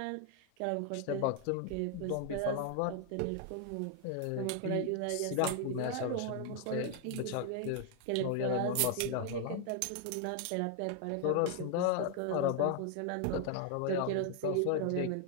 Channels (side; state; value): both; different; correlation 0.00